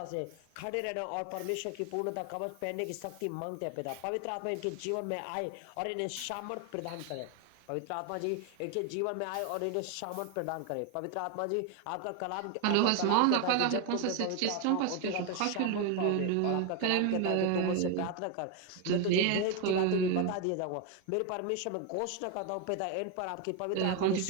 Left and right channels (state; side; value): different; both; correlation 0.01